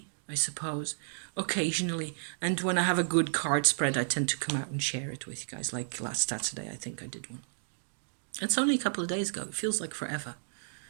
I suppose, occasionally. And when I have a good card spread, I tend to come out and share it with you guys. Like last Saturday, I think I did one. It's only a couple of days ago. It feels like forever.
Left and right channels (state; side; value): silent; left; digital silence